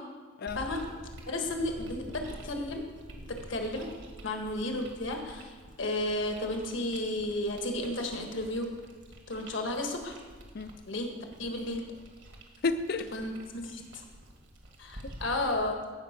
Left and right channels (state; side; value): normal; both; correlation 0.12